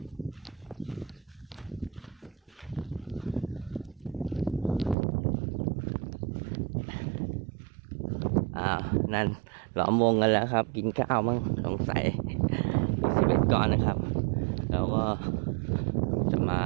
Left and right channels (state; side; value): drops out; left; at 5.0 s